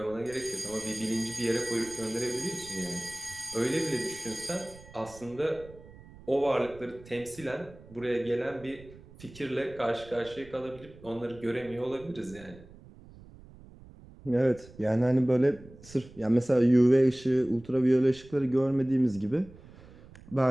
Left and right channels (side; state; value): right; noise; rumble, 21 dB below the sound